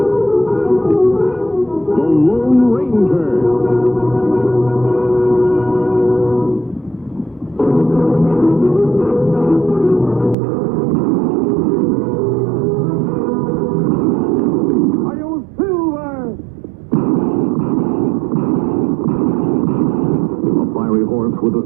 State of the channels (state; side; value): drops out; left; at 10.4 s